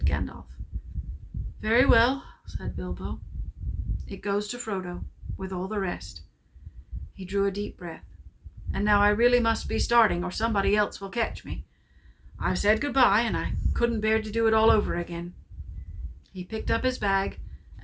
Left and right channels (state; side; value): identical; both; correlation 1.00